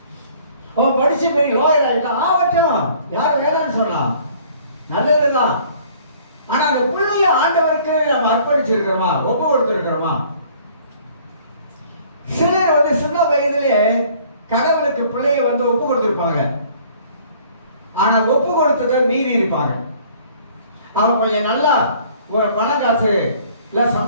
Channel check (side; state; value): both; inverted; correlation -0.55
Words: அவன் படிச்சு பெரிய லாயர் ஆகட்டும், யாரும் வேணான்னு சொல்லலாம், நல்லதுதான். ஆனா அந்த பிள்ளைய ஆண்டவருக்கு நம்ம அர்ப்பணிச்சிருக்கிறோமா, ஒப்பு கொடுத்துருக்கிறோமா? சிலர் வந்து சின்ன வயதிலே கடவுளுக்கு பிள்ளைய வந்து ஒப்பு கொடுத்திருப்பாங்க. ஆனா ஒப்பு கொடுத்ததை மீறி இருப்பாங்க. அவன் கொஞ்சம் நல்லா ஒரு பணம் காசு இல்ல